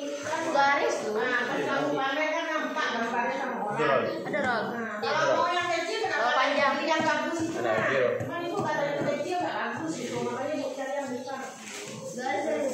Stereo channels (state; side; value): identical; both; correlation 1.00